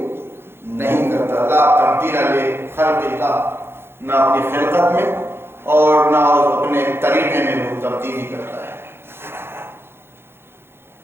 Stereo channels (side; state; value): left; late; 0.11 ms